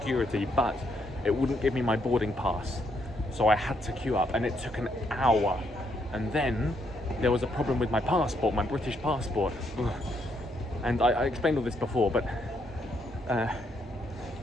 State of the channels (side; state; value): both; normal; correlation 0.75